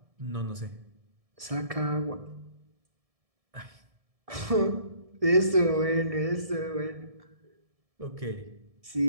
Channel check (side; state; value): left; late; 1.7 ms